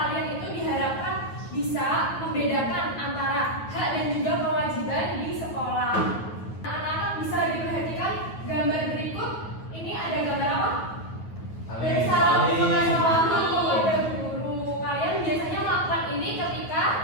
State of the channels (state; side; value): late; right; 9.3 ms